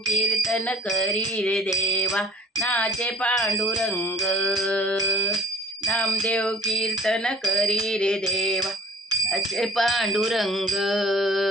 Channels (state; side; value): normal; both; correlation 0.53